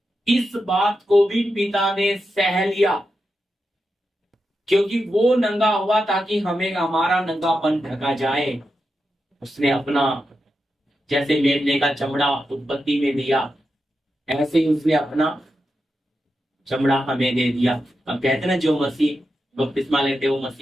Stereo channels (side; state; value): both; normal; correlation 0.88